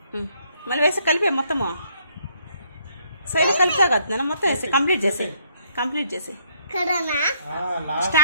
మళ్ళీ వేసి కలిపే మొత్తము సైడ్ కలిపా కదా మొత్తం వేసి కంప్లీట్ చేసి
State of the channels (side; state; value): both; inverted; correlation -0.69